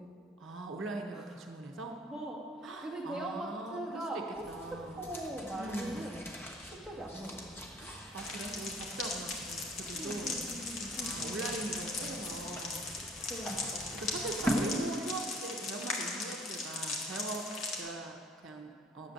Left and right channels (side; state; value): both; normal; correlation 0.54